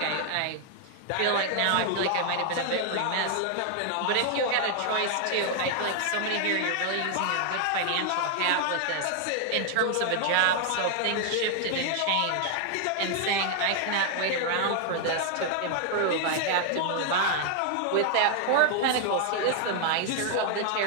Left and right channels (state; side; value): different; both; correlation 0.00